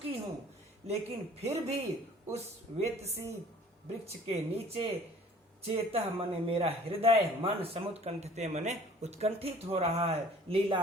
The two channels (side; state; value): both; normal; correlation 0.51